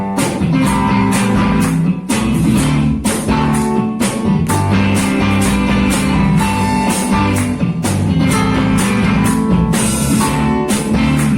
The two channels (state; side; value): identical; both; correlation 1.00